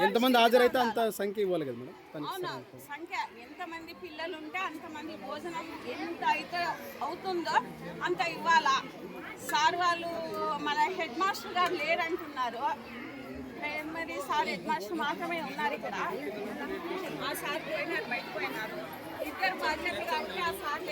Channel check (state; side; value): identical; both; correlation 1.00